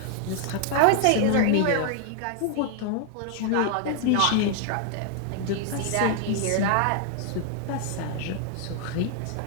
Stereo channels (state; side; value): different; both; correlation 0.00